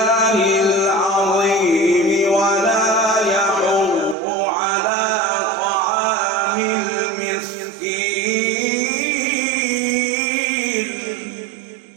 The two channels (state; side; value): drops out; left; at 4.2 s